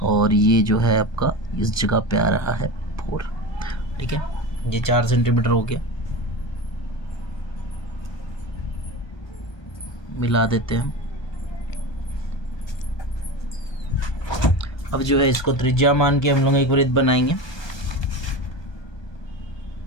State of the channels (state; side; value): late; right; 1.2 ms